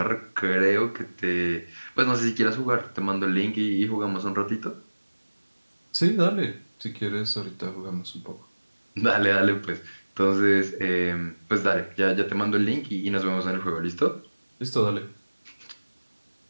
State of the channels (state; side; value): inverted; both; correlation -1.00